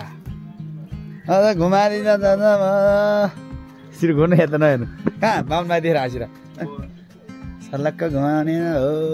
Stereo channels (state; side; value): identical; both; correlation 1.00